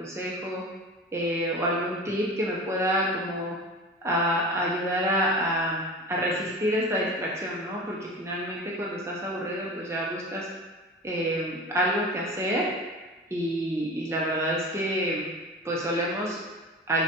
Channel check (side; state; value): both; normal; correlation 0.33